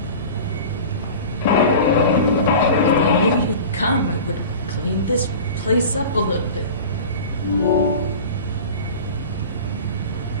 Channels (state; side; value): inverted; both; correlation -0.36